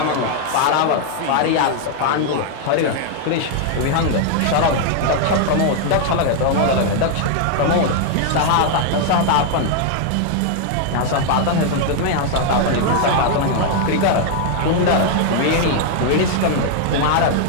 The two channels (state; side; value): different; both; correlation 0.00